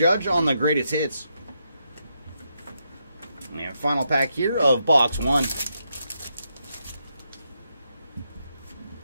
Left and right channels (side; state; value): both; inverted; correlation -0.82